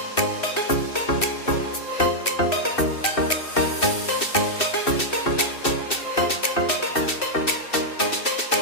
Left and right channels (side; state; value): right; late; 2.7 ms